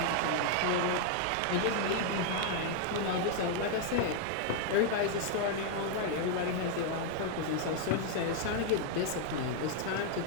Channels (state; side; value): different; both; correlation 0.00